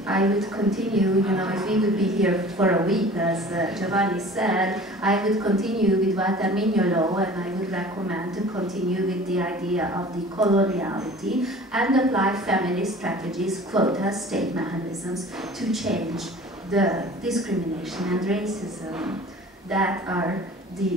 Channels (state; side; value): normal; both; correlation 0.44